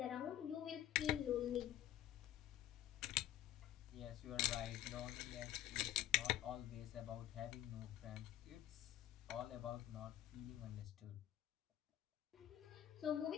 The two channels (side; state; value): right; quieter; 12.7 dB